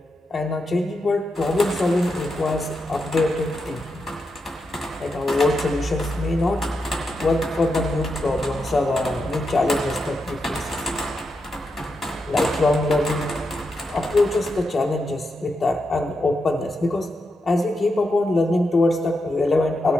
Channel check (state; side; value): normal; both; correlation 0.85